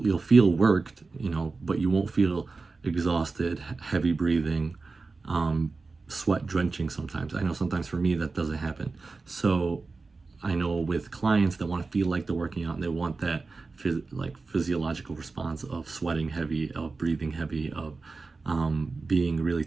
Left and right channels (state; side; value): quieter; left; 4.0 dB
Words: feel worked, but you won't feel exhausted, heavy breathing, sweat drenching sometimes. I know sometimes for me that doesn't happen. So I know with clients that want to feel like they're working out and they want that physiological response of sweating heavy, of breathing heavy, of being really